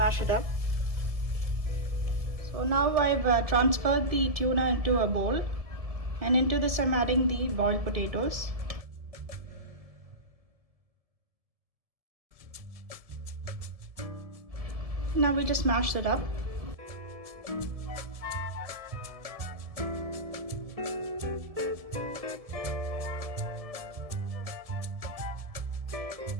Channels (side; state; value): left; late; 1.7 ms